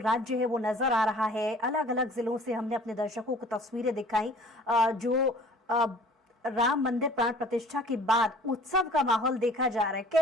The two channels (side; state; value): both; normal; correlation 0.50